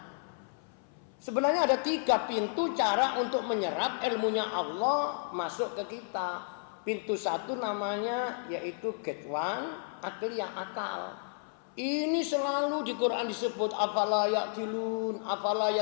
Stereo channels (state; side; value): silent; right; 56 dB below the other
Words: Sebenarnya ada 3 pintu cara untuk menyerap ilmunya Allah masuk ke kita. Pintu 1 namanya yaitu gate one, akliyah, akal. Ini selalu di Quran disebut afala yaqilun, afala